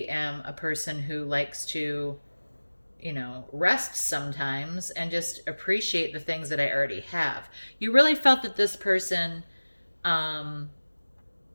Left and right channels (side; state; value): both; inverted; correlation -1.00